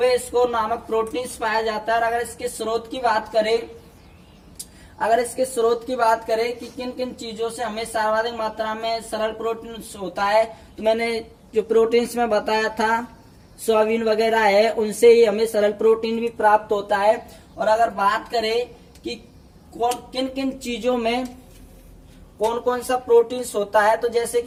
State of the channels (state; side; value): identical; both; correlation 1.00